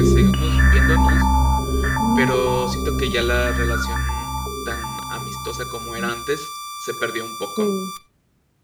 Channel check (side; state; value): both; identical; correlation 1.00